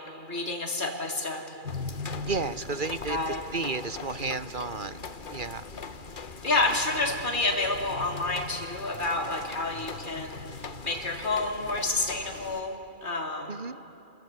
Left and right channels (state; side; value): late; left; 2.4 ms